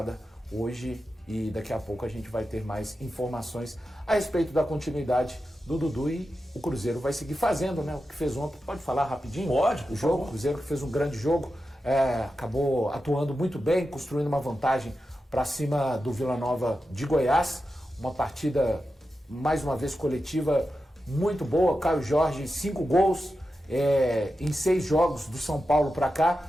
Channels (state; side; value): normal; both; correlation 0.91